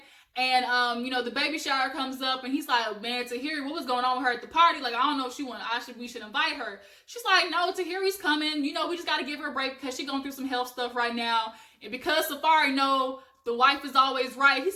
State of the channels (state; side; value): identical; both; correlation 1.00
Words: And, the baby shower comes up and he's like, man, Tahiry, what was going on with her at the party? Like, I don't know if we should invite her. She's like, no, Tahiry's coming. You know, we just got to give her a break because she's going through some health stuff right now. And because Safari know the wife is always right, he